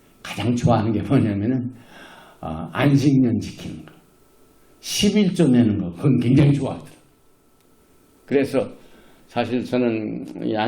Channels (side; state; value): both; identical; correlation 1.00